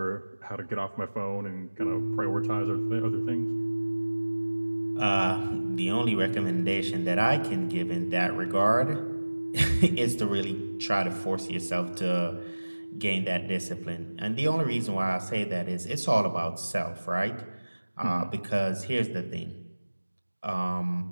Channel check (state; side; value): inverted; both; correlation -1.00